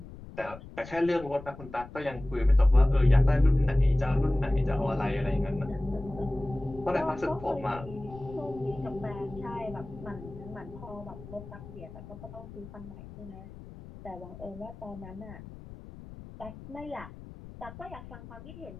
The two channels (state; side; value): noise; left; rumble, 15 dB below the sound